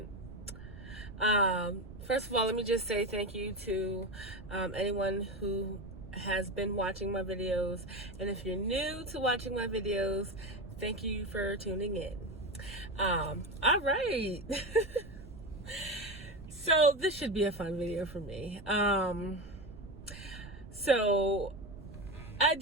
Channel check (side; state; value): right; noise; rumble, 16 dB below the sound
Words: First of all, let me just say thank you to anyone who has been watching my videos, and if you're new to watching my videos, thank you for tuning in. All right. So this should be a fun video for me. So I